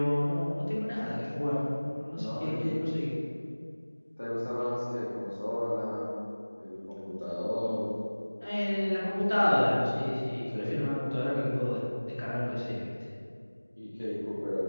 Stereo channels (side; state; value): both; inverted; correlation -1.00